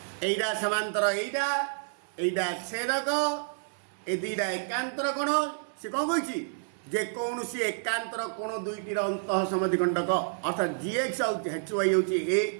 एटा समांतर एटा छेदक ए दुईटा एकांतर कोण से कौन कही जे कौन सी एकांतर कोण दुईटीर अंतः समद्विखंडक अर्थात जी एक्स आउ एच वाई हूँ ए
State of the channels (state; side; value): silent; left; 58 dB below the other